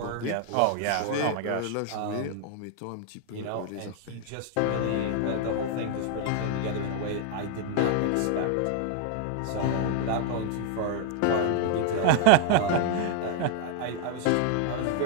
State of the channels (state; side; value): different; both; correlation 0.00